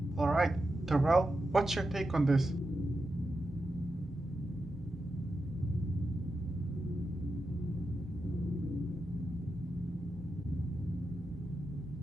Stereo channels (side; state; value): both; normal; correlation 0.89